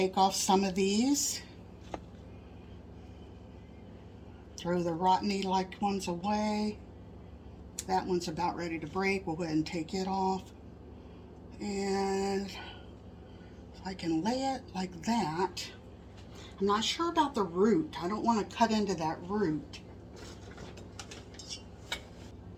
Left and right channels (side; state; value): both; identical; correlation 1.00